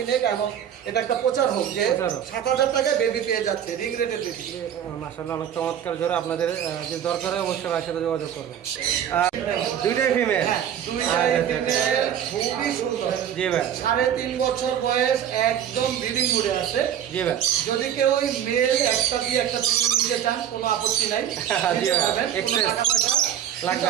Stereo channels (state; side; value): quieter; left; 9.7 dB